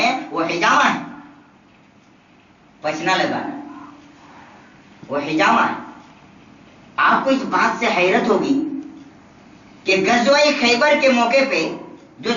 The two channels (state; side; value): identical; both; correlation 1.00